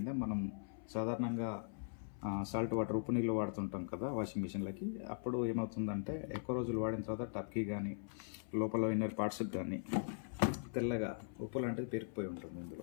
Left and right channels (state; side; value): silent; right; 51 dB below the other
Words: మనం సాధారణంగా సాల్ట్ వాటర్ ఉప్పు నీళ్ళు వాడుతుంటాం కదా వాషింగ్ మిషన్లకి. అప్పుడు ఏమవుతుందంటే ఎక్కువ రోజులు వాడిన తర్వాత టప్కి కానీ లోపల ఇన్నర్ పార్ట్స్కి కానీ తెల్లగా ఉప్పు లాంటిది పెరిగిపోయి ఉంటుంది.